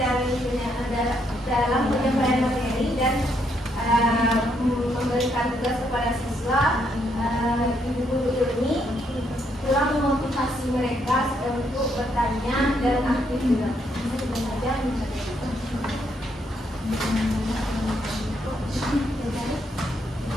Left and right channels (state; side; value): normal; both; correlation 0.74